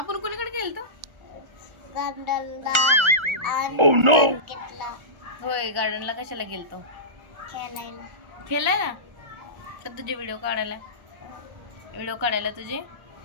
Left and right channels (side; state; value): left; late; 1.3 ms